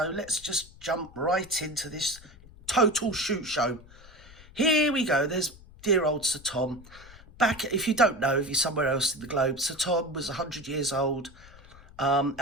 let's just jump right into this total shoot show. Here we go. There's dear old Sir Tom. Back, if you don't know, if you're somewhere else in the globe, Sir Tom was 100 years old,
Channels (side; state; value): left; noise; rumble, 21 dB below the sound